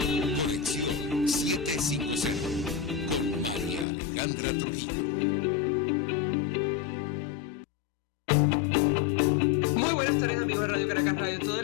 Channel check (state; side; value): drops out; right; at 3.9 s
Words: Conexión 750 con María Alejandra Trujillo. Muy buenas tardes, amigos de Radio Caracas Radio. Todo